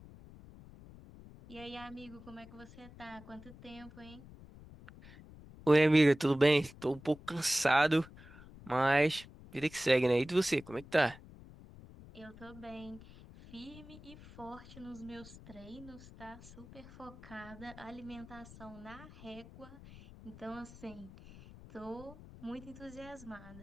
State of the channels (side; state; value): left; noise; rumble, 18 dB below the sound